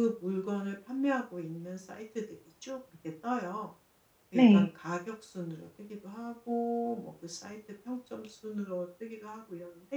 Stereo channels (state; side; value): identical; both; correlation 1.00